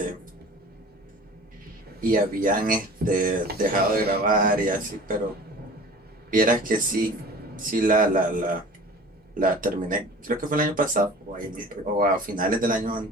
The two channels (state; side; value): normal; both; correlation 0.41